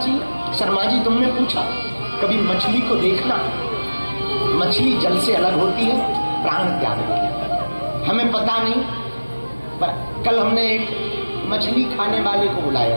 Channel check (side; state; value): both; inverted; correlation -1.00